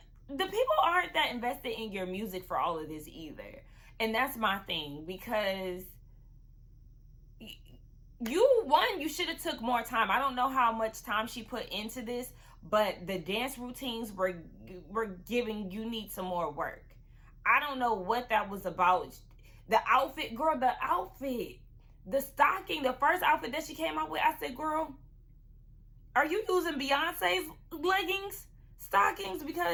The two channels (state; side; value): identical; both; correlation 1.00